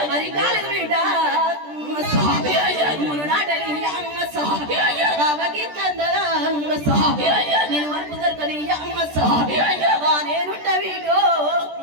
మరి కాలం వీడ మును నాటని నేను వరకు దొరకని నేనుంట వీడు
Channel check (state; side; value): late; left; 14 ms